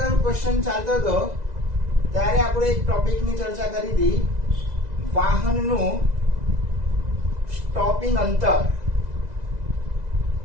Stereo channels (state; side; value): late; left; 2.0 ms